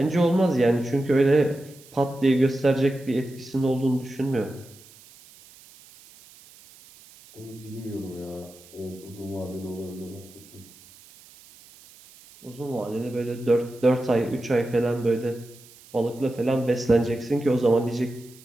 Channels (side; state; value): right; noise; hiss, 23 dB below the sound